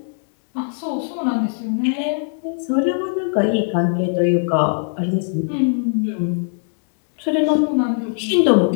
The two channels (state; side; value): silent; right; digital silence